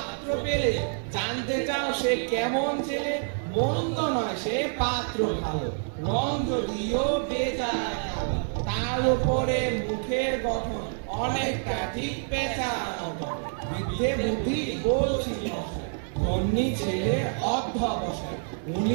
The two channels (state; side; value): silent; left; 60 dB below the other